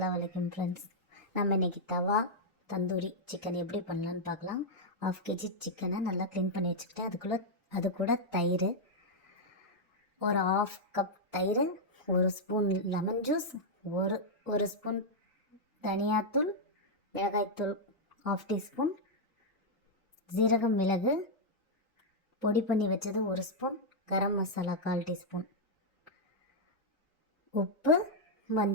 அலைக்கும் ஃப்ரெண்ட்ஸ். நம்ம இன்றைக்கி தவா தந்தூரி சிக்கன் எப்படி பண்ணலான்னு பார்க்கலாம். 1/2 kg சிக்கனை நல்லா க்ளீன் பண்ணி வச்சுக்கிட்டேன். அது கூட தயிர், ஒரு 1/2 கப் தயிர், 1 ஸ்பூன் லெமன் ஜூஸ், ஒரு ஸ்பூன் தனியாத்தூள், மிளகாய்த்தூள் 1/2 டீஸ்பூன், ஜீரகம் மிளகு பொடி பண்ணி வச்சது 1 ஸ்பூன், கரம் மசாலா 1/4 டீஸ்பூன், உப்பு,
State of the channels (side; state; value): both; normal; correlation -0.04